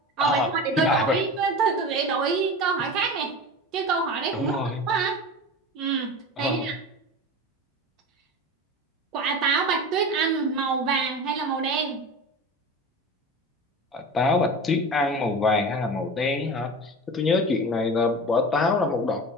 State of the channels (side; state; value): both; normal; correlation 0.31